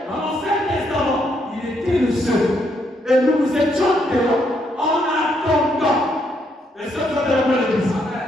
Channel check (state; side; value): normal; both; correlation 0.75